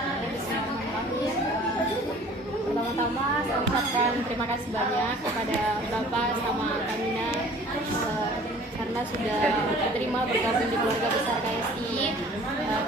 Pertama-tama saya ucapkan terima kasih banyak kepada Bapak sama Kamina karena sudah diterima bergabung di keluarga besar KSI.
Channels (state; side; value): normal; both; correlation 0.49